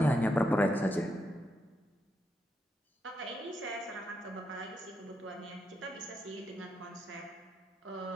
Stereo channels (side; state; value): both; normal; correlation 0.82